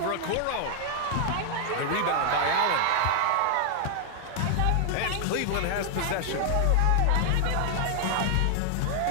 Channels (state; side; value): different; both; correlation 0.00